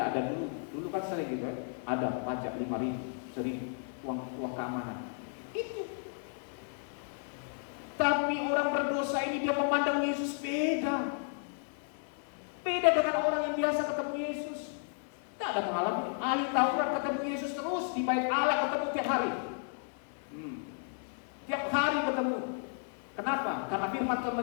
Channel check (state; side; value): silent; right; 56 dB below the other